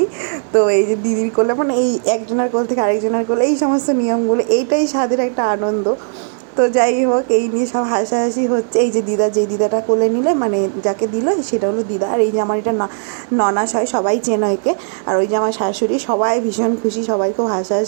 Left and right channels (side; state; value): left; silent; digital silence